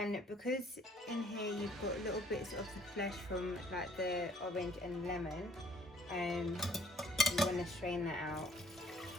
because in here you've got little bits of the flesh from like the orange and lemon, you want to strain that out.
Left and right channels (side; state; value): both; normal; correlation 0.59